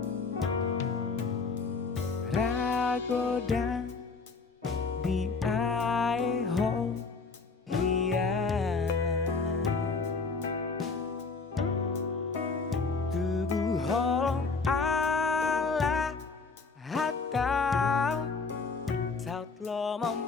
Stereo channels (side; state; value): right; quieter; 4.4 dB